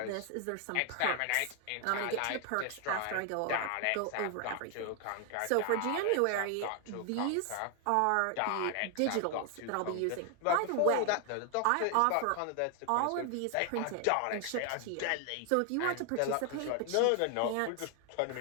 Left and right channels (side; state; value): both; different; correlation 0.00